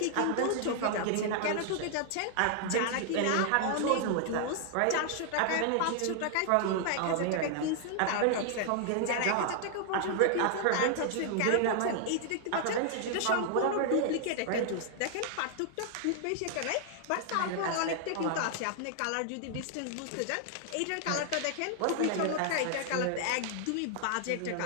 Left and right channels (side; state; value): both; different; correlation -0.01